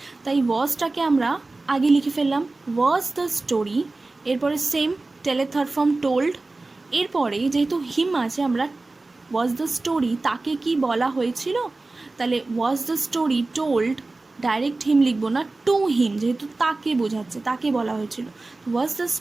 তাই ওয়াজটাকে আমরা আগে লিখে ফেললাম, ওয়াজ দ্য স্টোরি। এরপরে সেম টেলের থার্ড ফর্ম টোল্ড, এরপরে যেহেতু হিম আছে, আমরা ওয়াজ দ্য স্টোরি তাকে কি বলা হয়েছিল, তাহলে was the story told, direct him লিখবো না, টু হিম, যেহেতু তাকে বোঝাচ্ছে, তাকে বলা হয়েছিল, was the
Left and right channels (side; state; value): left; quieter; 3.3 dB